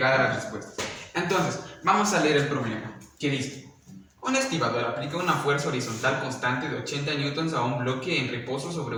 a las respuestas. Entonces, vamos a leer el problema, que dice: un estibador aplica una fuerza horizontal constante de 80 newtons a un bloque en reposo sobre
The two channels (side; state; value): both; identical; correlation 1.00